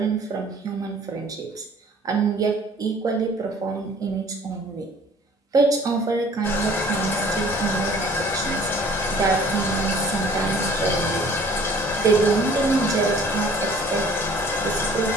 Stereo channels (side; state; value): both; normal; correlation 0.52